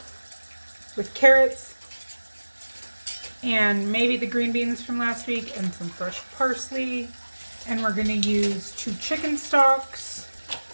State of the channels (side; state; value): both; inverted; correlation -1.00